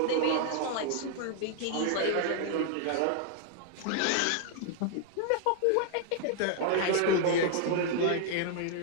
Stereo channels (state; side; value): different; both; correlation 0.00